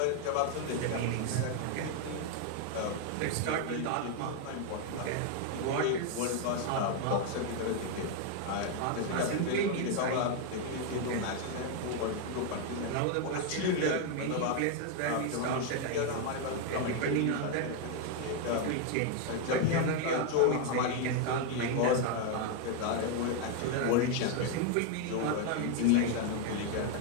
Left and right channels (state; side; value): different; both; correlation 0.01